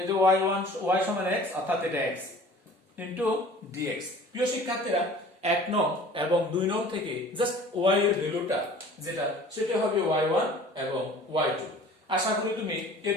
যে y1 y সমান x, অর্থাৎ এটা x ইনটু dx। প্রিয় শিক্ষার্থীরা, 1 নং এবং 2 নং থেকে জাস্ট y এর ভ্যালুটা যেটা সেটা হবে y1 এবং y2। আশা করি তুমি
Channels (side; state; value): both; normal; correlation 0.46